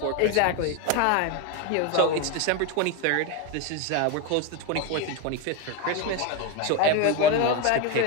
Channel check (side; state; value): both; different; correlation 0.02